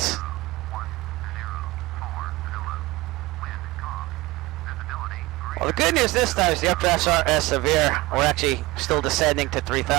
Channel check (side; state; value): left; quieter; 20.4 dB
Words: Well, the good news this time is the updrafts aren't as severe. We're actually still descending to